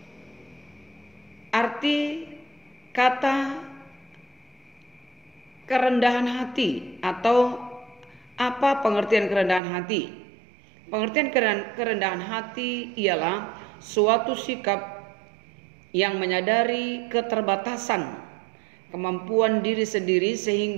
Arti kata kerendahan hati, atau apa pengertian kerendahan hati? Pengertian kerendahan hati ialah suatu sikap yang menyadari keterbatasan kemampuan diri sendiri,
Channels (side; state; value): left; drops out; at 9.6 s